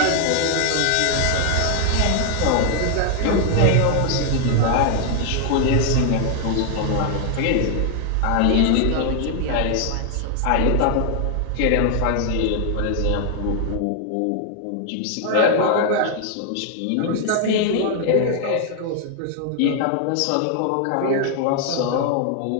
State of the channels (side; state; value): both; different; correlation 0.00